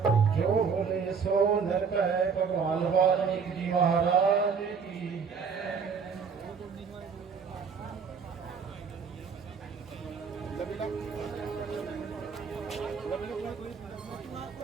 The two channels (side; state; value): left; quieter; 5.9 dB